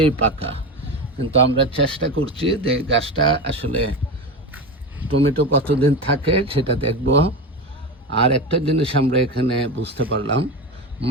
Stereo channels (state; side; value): normal; both; correlation 0.22